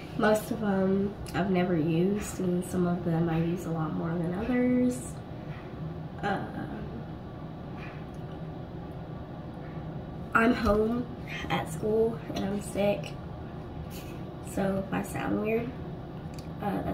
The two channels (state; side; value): identical; both; correlation 1.00